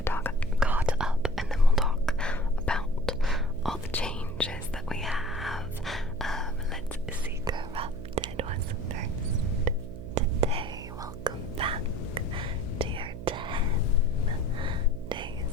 caught up, and then we'll talk about all the changes that we have. Let's see, Corrupted was first today. Welcome back to your 10-day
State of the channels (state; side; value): noise; right; hum, 10 dB below the sound